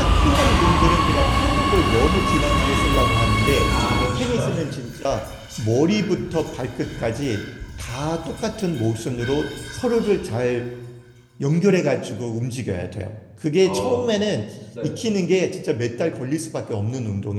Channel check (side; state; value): both; identical; correlation 1.00